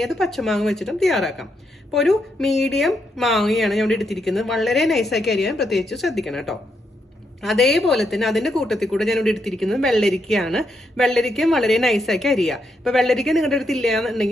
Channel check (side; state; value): both; normal; correlation 0.80